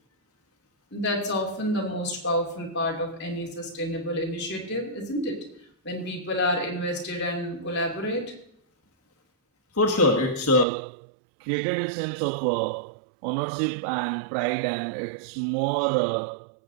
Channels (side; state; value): left; drops out; at 10.7 s